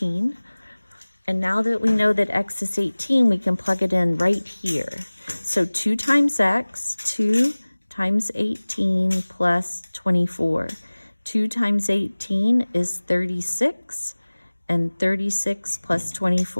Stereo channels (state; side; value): inverted; both; correlation -1.00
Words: And now that we know that x is 18, we can plug it in right here. So 2 times x, 2 times 18 plus 24. 2 times 18 is 36, and 36 plus